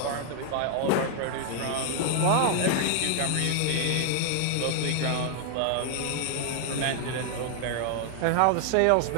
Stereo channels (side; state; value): both; different; correlation 0.00